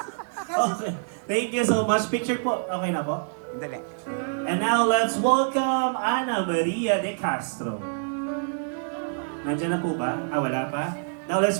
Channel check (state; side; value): silent; left; digital silence